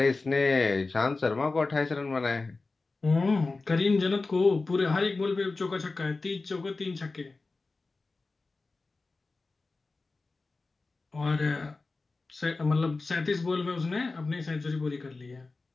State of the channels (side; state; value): right; quieter; 3.6 dB